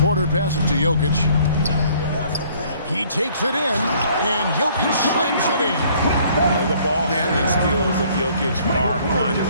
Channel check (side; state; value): both; inverted; correlation -0.59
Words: Porter passes to Jokic. He takes it in, and Jokic slams it in. The ball handling skills of Jokic are